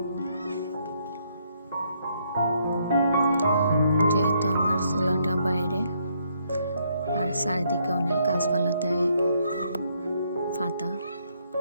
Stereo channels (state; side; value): inverted; both; correlation -0.72